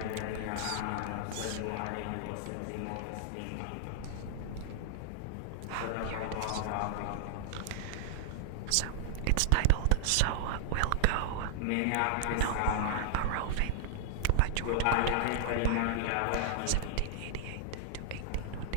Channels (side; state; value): both; different; correlation -0.01